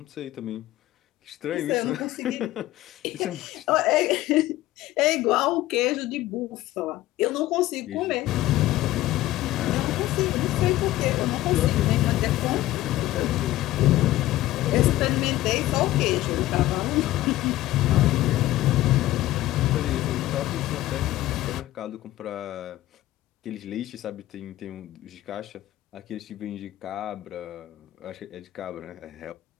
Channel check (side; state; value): right; quieter; 15.8 dB